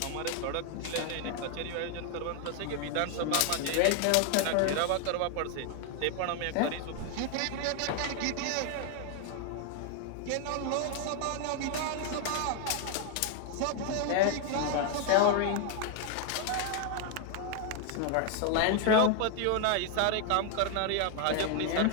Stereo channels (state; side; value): different; both; correlation 0.00